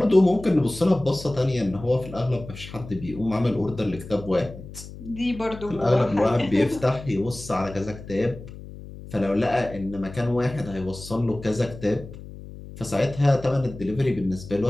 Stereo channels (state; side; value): noise; left; hum, 14 dB below the sound